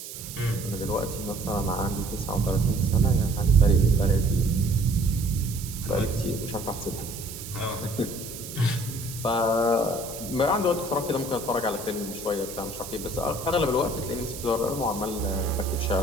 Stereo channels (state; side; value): noise; right; hiss, 11 dB below the sound